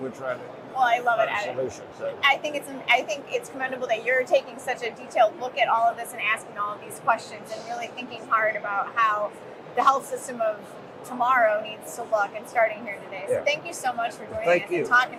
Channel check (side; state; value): both; identical; correlation 1.00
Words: trying to. Well, I love it. Solution. So. I think it's commendable that you're taking such a detailed look at all of this and asking all of these questions and really thinking hard about how the health system of tomorrow needs to look, and starting here today. So thank you so much for joining us and